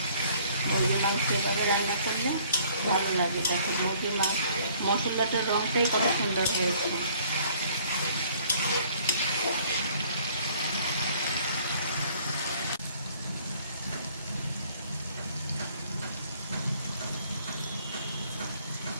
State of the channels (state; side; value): inverted; both; correlation -0.59